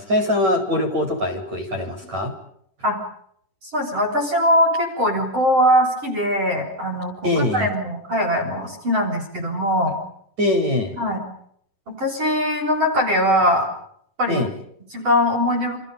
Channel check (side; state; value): left; late; 10 ms